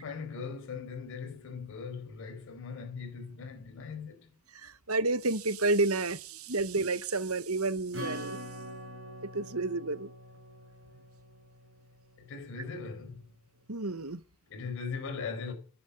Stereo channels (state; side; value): normal; both; correlation -0.20